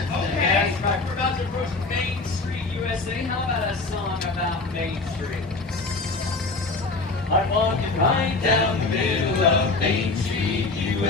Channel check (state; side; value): quieter; right; 3.5 dB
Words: Okay. Yes, right. We're about to approach Main Street, USA. How about a song about Main Street? I'm walking right down the middle of Main Street,